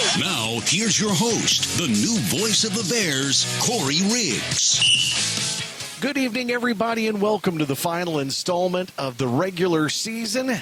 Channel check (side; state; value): both; identical; correlation 1.00